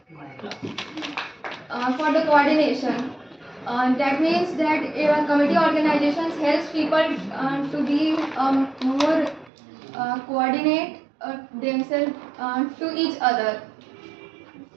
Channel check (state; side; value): drops out; left; at 9.5 s